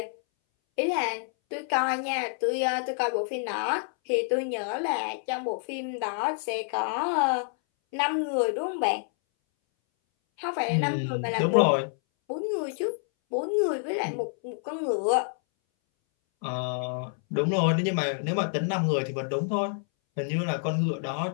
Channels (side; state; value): right; silent; 60 dB below the other